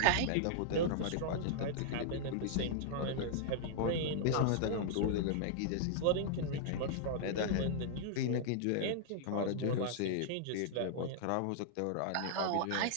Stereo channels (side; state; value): both; different; correlation -0.01